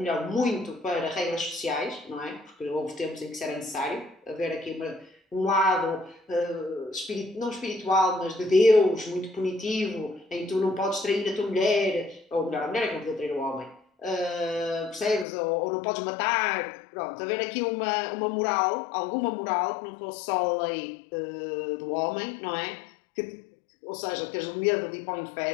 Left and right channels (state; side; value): drops out; right; at 15.2 s